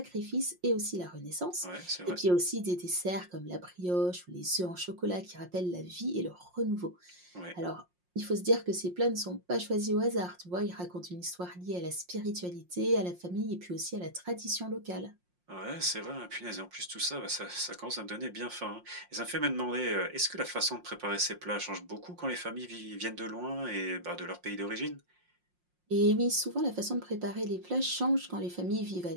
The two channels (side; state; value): left; late; 5.6 ms